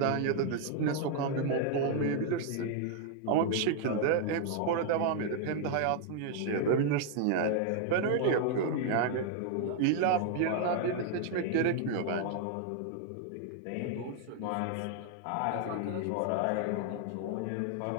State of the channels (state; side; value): different; both; correlation 0.00